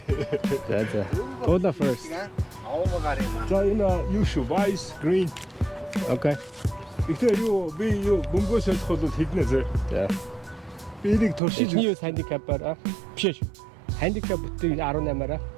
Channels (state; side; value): drops out; left; at 11.4 s